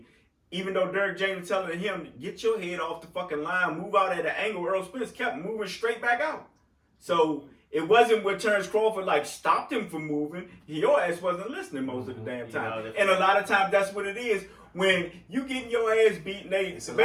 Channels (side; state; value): both; identical; correlation 1.00